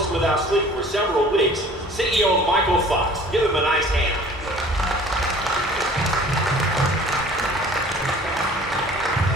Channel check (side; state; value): both; normal; correlation 0.49